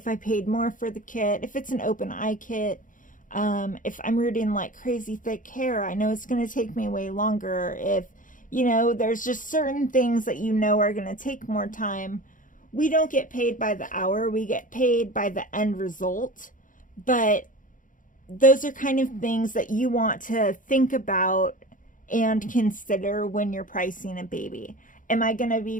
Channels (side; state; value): right; late; 0.38 ms